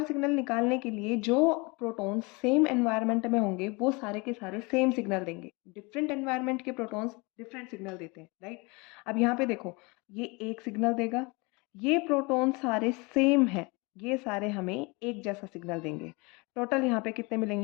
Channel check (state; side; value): quieter; right; 27.5 dB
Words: सिग्नल निकालने के लिए जो प्रोटॉन्स सेम एनवायरनमेंट में होंगे वो सारे के सारे सेम सिग्नल देंगे। डिफरेंट एनवायरनमेंट के प्रोटॉन्स डिफरेंट सिग्नल देते हैं, राइट। अब यहाँ पे देखो ये एक सिग्नल देगा, ये प्रोटॉन सारे सेम हैं, ये सारे हमें एक जैसा सिग्नल देंगे। टोटल यहाँ पे कितने